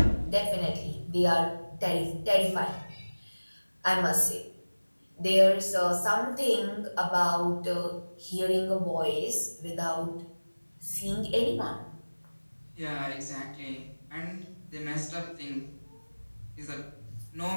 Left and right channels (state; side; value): inverted; both; correlation -1.00